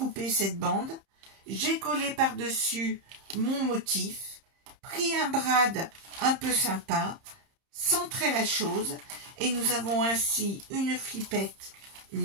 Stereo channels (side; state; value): left; late; 30 ms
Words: cette bande, j'ai collé par-dessus mon motif, pris un brad un peu sympa, centré la chose, et nous avons ainsi une flippette,